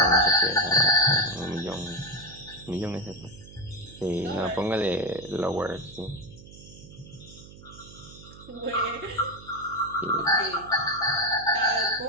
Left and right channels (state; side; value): noise; right; hum, 18 dB below the sound